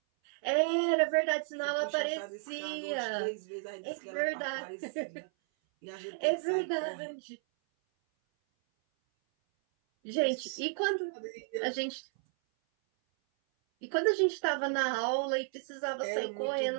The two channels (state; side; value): silent; left; 56 dB below the other